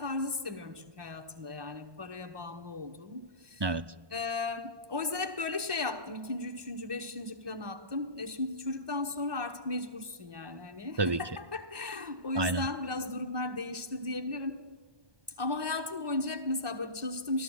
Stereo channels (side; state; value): left; late; 1.2 ms